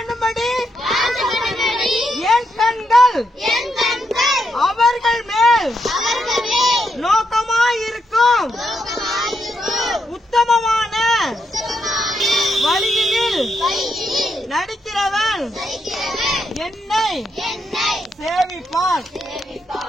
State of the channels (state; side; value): normal; both; correlation 0.80